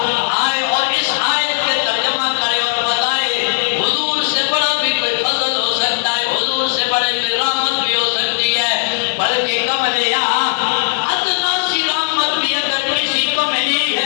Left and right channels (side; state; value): right; silent; digital silence